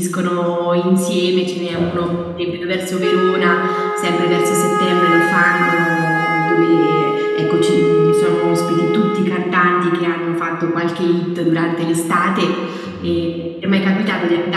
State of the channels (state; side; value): identical; both; correlation 1.00